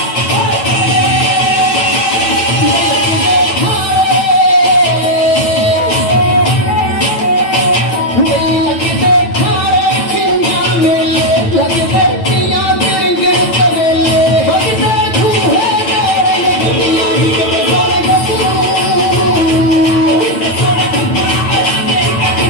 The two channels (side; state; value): right; late; 9.0 ms